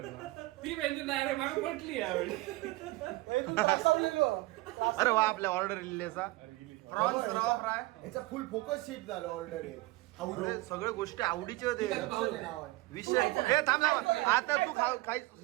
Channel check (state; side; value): quieter; left; 20.5 dB